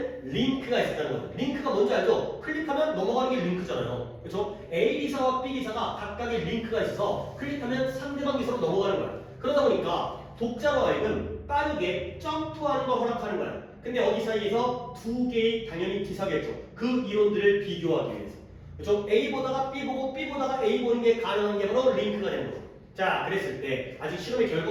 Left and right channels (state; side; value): identical; both; correlation 1.00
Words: 링크가 있었다는 거죠 링크가 뭔지 알죠? 클릭하면 넘어가는 게 링크잖아요 그렇죠? A 기사와 B 기사가 각각의 링크가 있어서 클릭하면 상대방 기사로 넘어가는 거예요 그러다 보니까 독자로 하여금 빠르게 점프하는 걸 허락하는 거예요 근데 어디 사이에서 2개의 당연히 기사겠죠 그 이론들을 비교하기 위해서 그렇죠? A 보다가 B 보고 B 보다가 A 보는 게 가능한 게 바로 링크가 되는 거죠 자 그랬을 때 아직 실험의